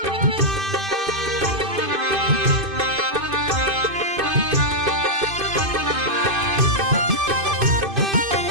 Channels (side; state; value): left; late; 2.5 ms